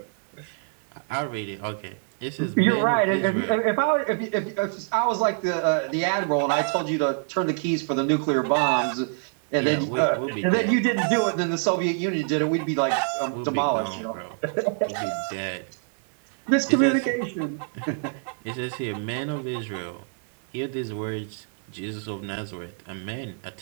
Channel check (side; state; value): left; silent; 61 dB below the other